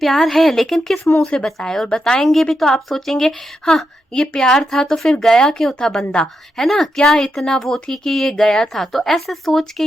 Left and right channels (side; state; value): both; normal; correlation 0.84